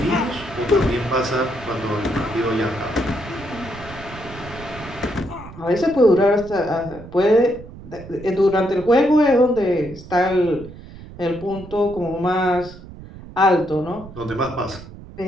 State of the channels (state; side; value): noise; right; rumble, 16 dB below the sound